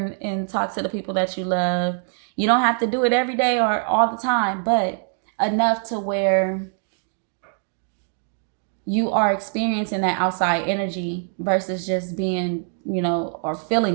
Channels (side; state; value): left; silent; digital silence